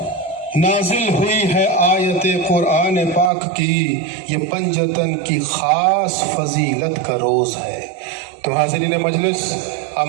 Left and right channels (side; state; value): left; drops out; at 3.3 s